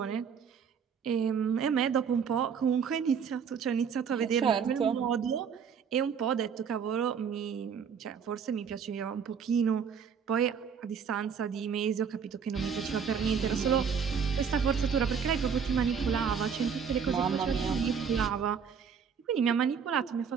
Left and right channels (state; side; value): quieter; left; 6.8 dB